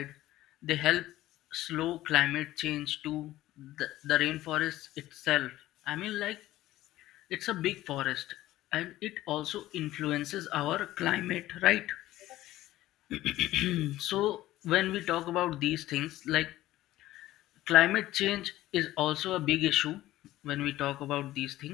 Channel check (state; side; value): quieter; right; 15.4 dB